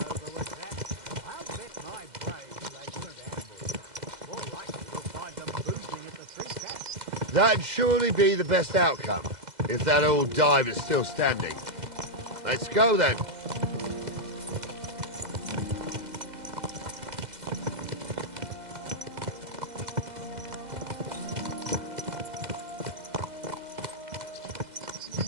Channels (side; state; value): left; late; 2.0 ms